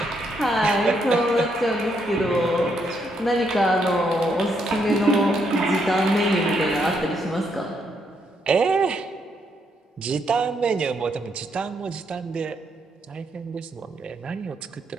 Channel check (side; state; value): both; normal; correlation 0.75